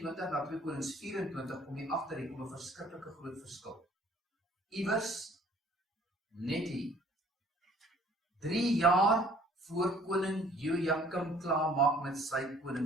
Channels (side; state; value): both; normal; correlation 0.55